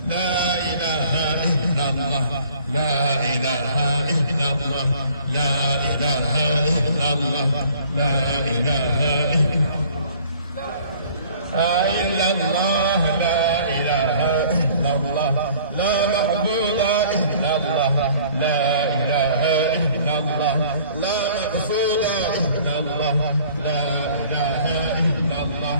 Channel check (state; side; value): inverted; both; correlation -0.53